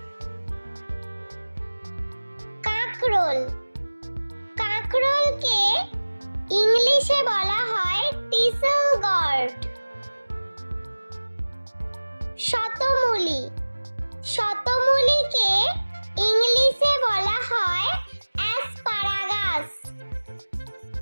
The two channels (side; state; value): both; inverted; correlation -1.00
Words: কাঁকরোল, কাঁকরোলকে ইংলিশে বলা হয় টিসেল গর্ড। শতমূলি, শতমূলিকে ইংলিশে বলা হয় অ্যাসপারাগাস।